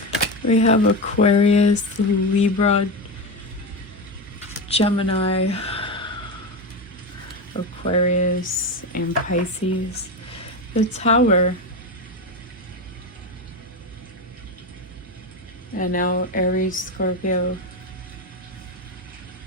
We have Aquarius, Libra, Gemini, Aquarius, and Pisces. The Tower. And now Aries, Scorpio.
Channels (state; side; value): normal; both; correlation 0.17